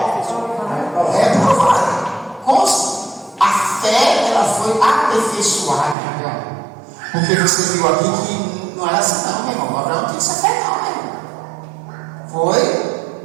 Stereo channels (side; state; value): left; drops out; at 6.0 s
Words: reprovado. A fé, ela foi aperfeiçoada. Porque você viu aqui que não era assim não, meu irmão. Abraão não tinha essa fé não, meu irmão. Foi